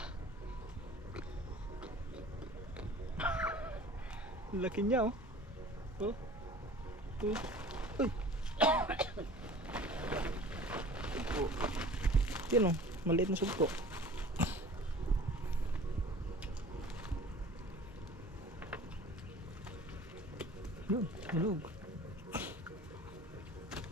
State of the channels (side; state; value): both; normal; correlation 0.44